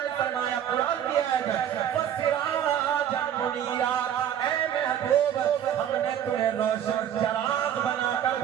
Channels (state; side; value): quieter; left; 9.9 dB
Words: فرمایا قرآن کی آیت وَسِرَاجًا مُنِيرًا، اے محبوب ہم نے تمہیں روشن چراغ بنا کر